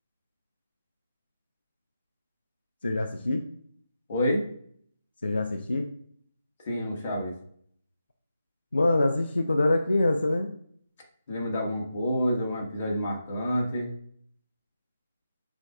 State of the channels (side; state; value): both; inverted; correlation -0.89